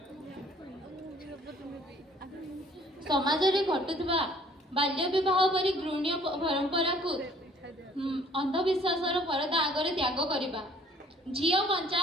ସମାଜରେ ଘଟୁଥିବା ବାଲ୍ୟ ବିବାହ ପରି ଘୃଣ୍ୟ ପରମ୍ପରାକୁ ଅନ୍ଧବିଶ୍ୱାସର ପରଦା ଆଗରେ ତ୍ୟାଗ କରିବା। ଝିଅ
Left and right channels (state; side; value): normal; both; correlation 0.57